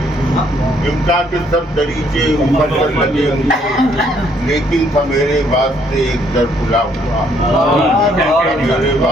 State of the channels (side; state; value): both; normal; correlation 0.67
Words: امکا کے سب دریچے مکفر لگے مجھے، لیکن تھا میرے واسطے ایک در کھلا ہوا، میرے